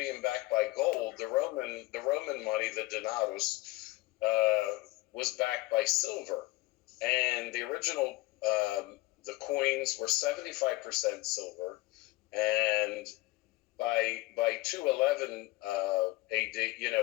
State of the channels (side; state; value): right; quieter; 20.4 dB